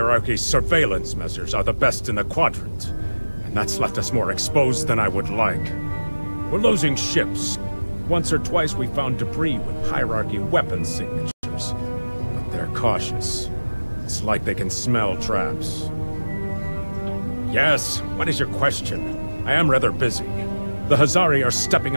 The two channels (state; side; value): inverted; both; correlation -1.00